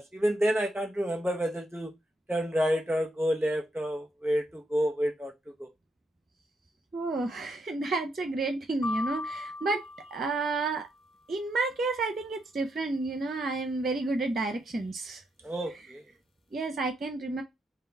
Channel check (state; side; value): normal; both; correlation 0.80